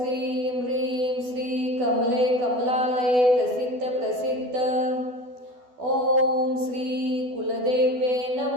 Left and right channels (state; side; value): late; left; 12 ms